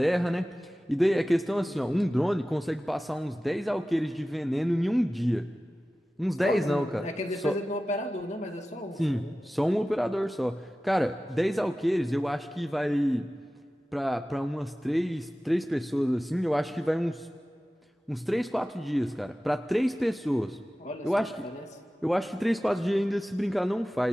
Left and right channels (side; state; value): both; normal; correlation 0.96